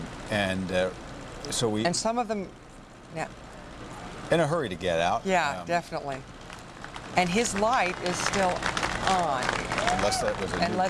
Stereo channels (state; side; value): identical; both; correlation 1.00